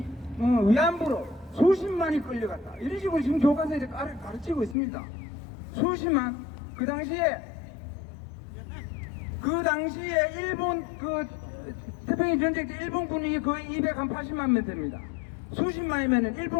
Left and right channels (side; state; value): right; drops out; at 4.8 s